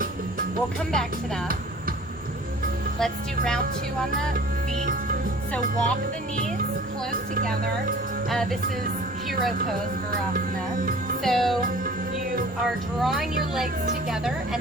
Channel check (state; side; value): normal; both; correlation 0.47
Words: We'll come back to that. Let's do round 2 on the feet. So walk the knees close together. This is hero pose, Virasana. So you are drawing your legs together